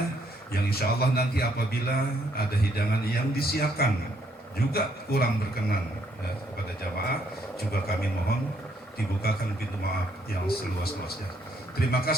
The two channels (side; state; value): both; normal; correlation 0.70